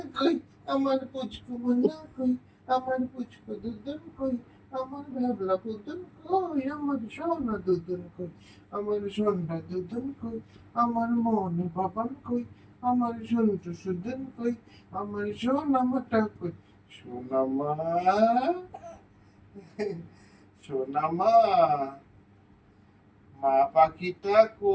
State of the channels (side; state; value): both; identical; correlation 1.00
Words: কই, আমার পুচকু মোনা কই, আমার পুচকু দুদন কই, আমার ভাবলা পুতুন কই, আমার সোনা দুদন কই, আমার সোনা দুদন কই, আমার মন বাবান কই, আমার সন্টু সুদন কই, আমার সোনা মাটা কই। সোনামা, সোনামা, মা পাখিটা